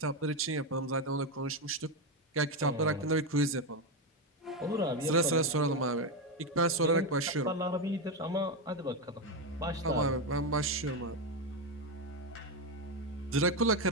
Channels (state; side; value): normal; both; correlation 0.10